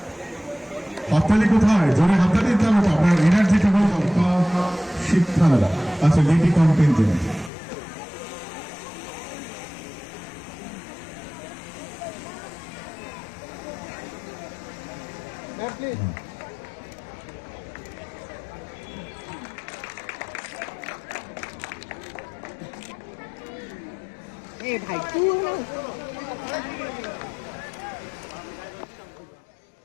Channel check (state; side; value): drops out; right; at 7.5 s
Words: হাততালি কোথায়? জোরে হাততালি দিতে হবে, আপনার এনার্জিটা হল শিক্ষালয়। আচ্ছা, লেডি কন্টিনজেন্ট। ভাই তুই